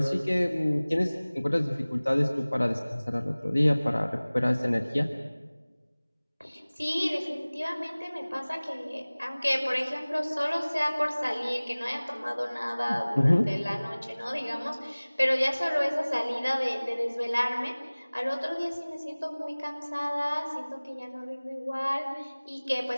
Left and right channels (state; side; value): inverted; both; correlation -1.00